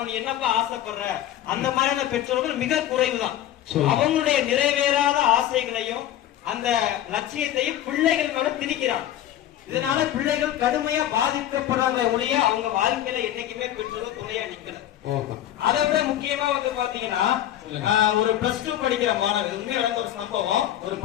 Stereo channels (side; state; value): right; quieter; 12.1 dB